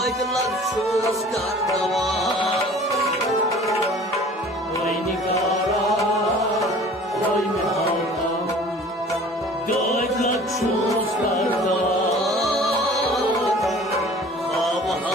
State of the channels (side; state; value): both; normal; correlation 0.47